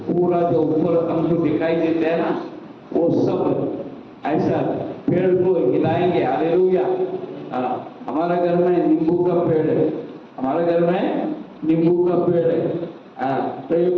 पूरा जो ऊपर हमको दिखाई देता है ना, वो सब ऐसा पेड़ को हिलाएंगे। हालेलुया। हमारा घर में नींबू का पेड़ है, हमारे घर में नींबू का पेड़ है। तो ये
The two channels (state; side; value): identical; both; correlation 1.00